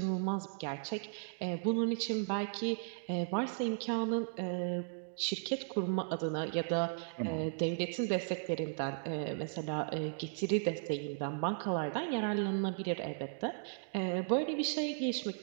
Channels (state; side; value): silent; left; digital silence